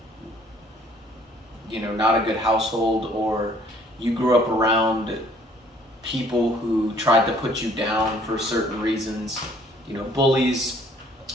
not a good household, or you grew up around people who tried to put you down for certain reasons, bullies,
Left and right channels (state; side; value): normal; both; correlation 0.59